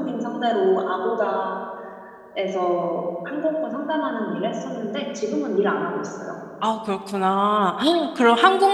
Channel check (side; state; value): both; identical; correlation 1.00